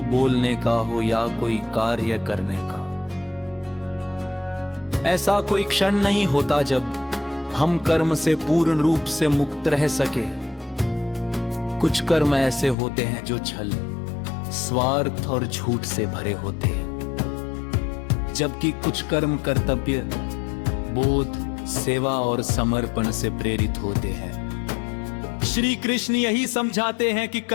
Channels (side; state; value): right; drops out; at 12.8 s